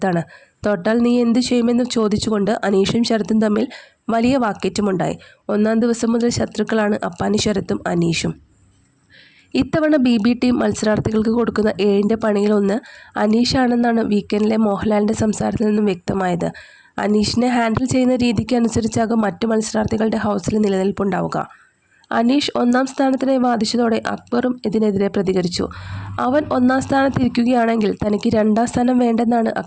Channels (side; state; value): both; identical; correlation 1.00